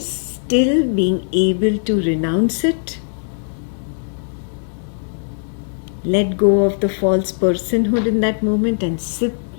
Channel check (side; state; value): right; silent; digital silence